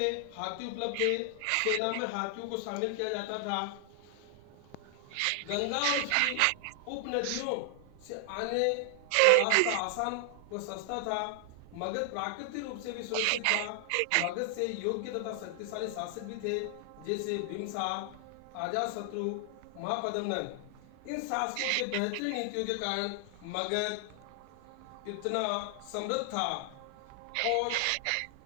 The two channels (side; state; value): both; different; correlation 0.00